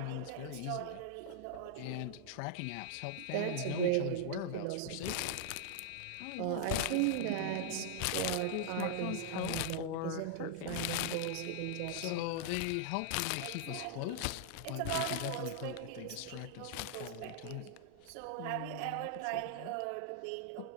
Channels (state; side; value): different; both; correlation -0.01